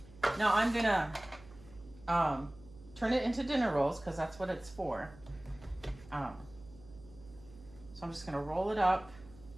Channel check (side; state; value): right; noise; hum, 21 dB below the sound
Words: Now I'm gonna turn it into dinner rolls because that's what it's for. So I'm just gonna roll it up.